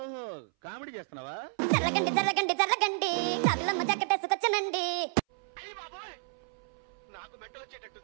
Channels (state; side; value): silent; left; 57 dB below the other